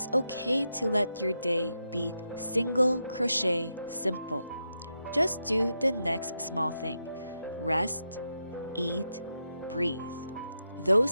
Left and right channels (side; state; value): both; inverted; correlation -0.85